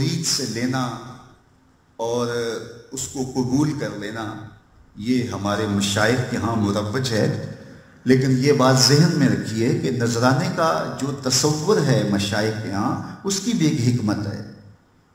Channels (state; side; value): identical; both; correlation 1.00